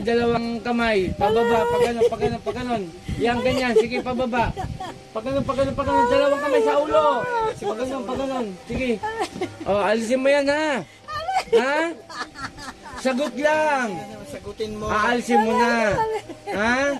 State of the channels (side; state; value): both; identical; correlation 1.00